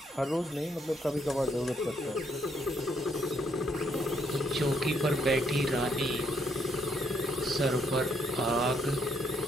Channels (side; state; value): both; normal; correlation 0.73